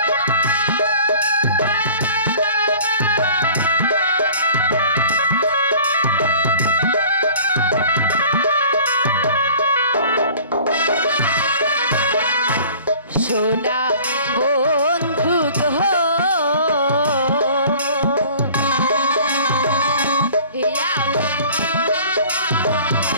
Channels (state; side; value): inverted; both; correlation -0.47